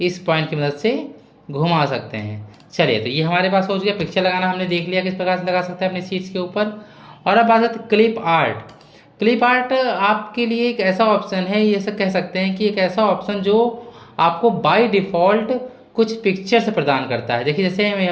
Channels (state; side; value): identical; both; correlation 1.00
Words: इस पॉइंट की मदद से घुमा सकते हैं। चलिए, तो ये हमारे पास हो गया। पिक्चर लगाना हमने देख लिया किस प्रकार से लगा सकते हैं अपनी सीट्स के ऊपर। और अब बात करते हैं क्लिप आर्ट। क्लिप आर्ट आपके लिए एक ऐसा ऑप्शन है, ये सब कह सकते हैं कि एक ऐसा ऑप्शन जो आपको बाय डिफ़ॉल्ट कुछ पिक्चर्स प्रदान करता है। देखिए जैसे